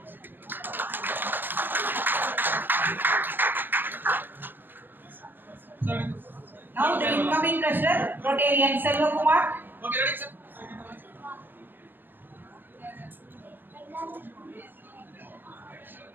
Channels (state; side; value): late; left; 0.094 ms